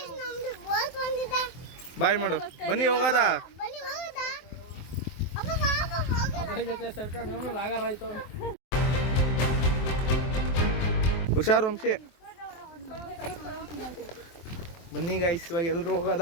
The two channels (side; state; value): right; late; 23 ms